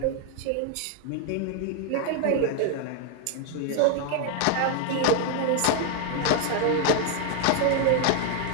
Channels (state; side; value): different; both; correlation 0.00